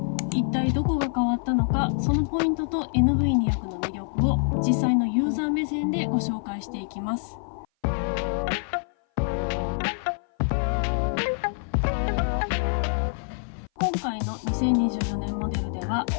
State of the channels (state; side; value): silent; right; 57 dB below the other